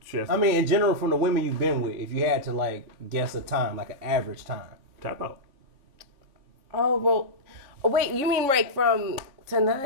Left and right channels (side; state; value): left; late; 3.6 ms